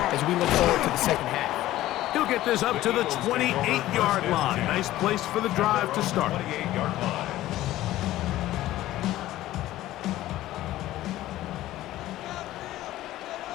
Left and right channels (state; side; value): quieter; right; 15.1 dB